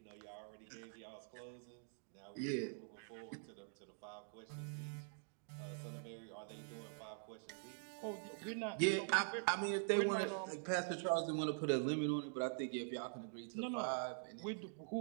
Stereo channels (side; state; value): left; silent; digital silence